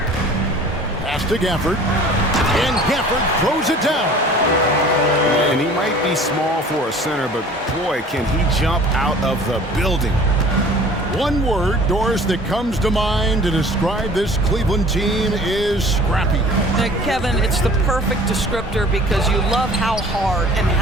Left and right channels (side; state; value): both; normal; correlation 0.47